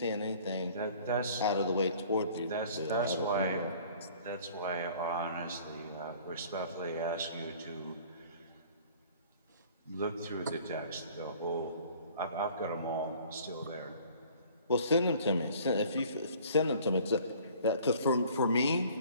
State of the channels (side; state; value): both; inverted; correlation -0.51